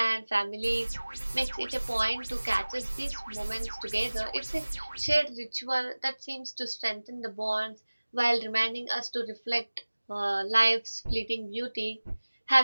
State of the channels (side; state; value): both; inverted; correlation -1.00